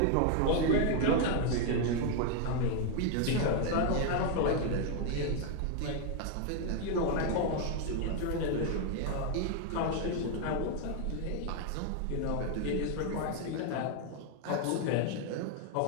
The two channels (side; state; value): both; different; correlation 0.00